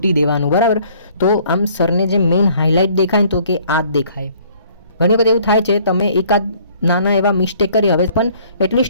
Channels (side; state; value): both; inverted; correlation -0.59